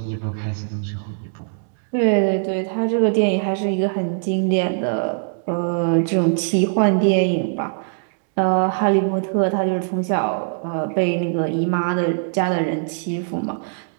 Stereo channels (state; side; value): silent; left; digital silence